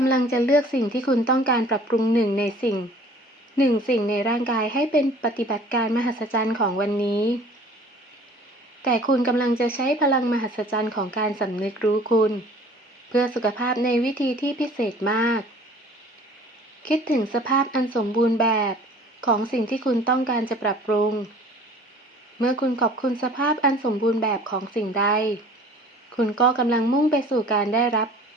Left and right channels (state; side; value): normal; both; correlation 0.49